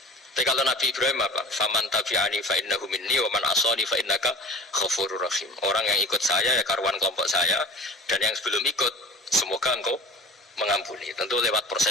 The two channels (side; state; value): both; normal; correlation 0.39